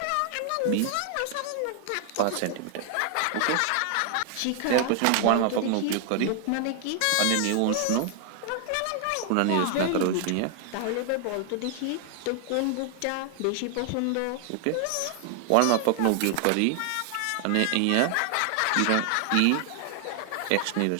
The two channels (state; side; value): different; both; correlation 0.00